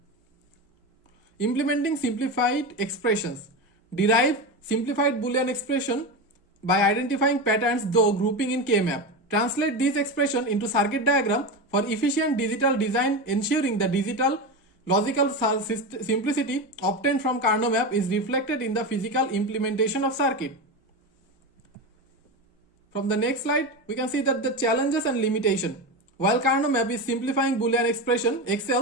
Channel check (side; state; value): both; normal; correlation 0.19